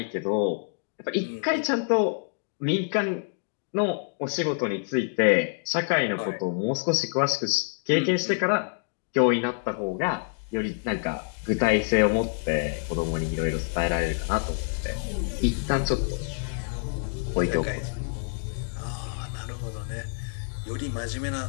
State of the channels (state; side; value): silent; right; digital silence